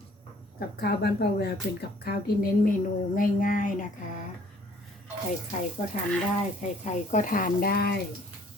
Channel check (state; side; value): normal; both; correlation 0.58